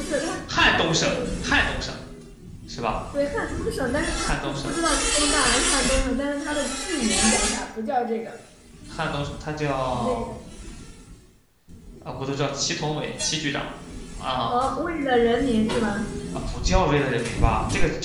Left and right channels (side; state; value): both; identical; correlation 1.00